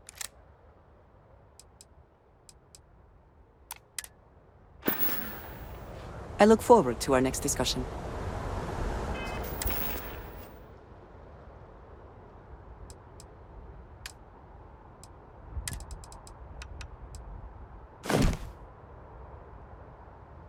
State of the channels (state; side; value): identical; both; correlation 1.00